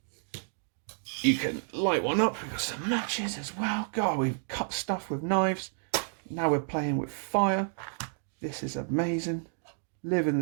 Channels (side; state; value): left; silent; 57 dB below the other